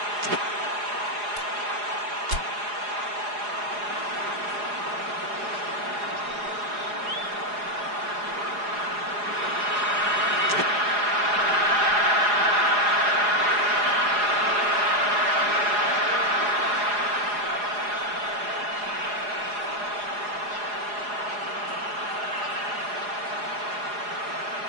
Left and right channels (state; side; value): late; left; 4.8 ms